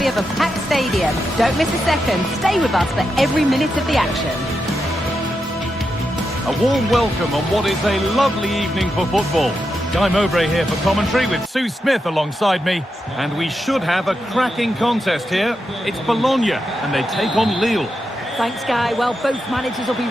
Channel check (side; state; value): both; normal; correlation 0.86